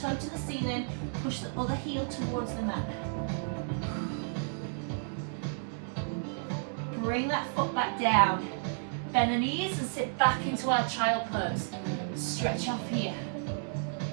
to the ceiling, push the other heel towards the mat. Bring that foot back down. Bend the knees and sit back into our child pose. Stretch off here.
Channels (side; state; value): left; silent; digital silence